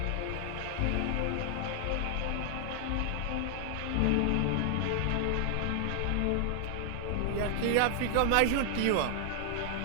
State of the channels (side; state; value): both; different; correlation 0.00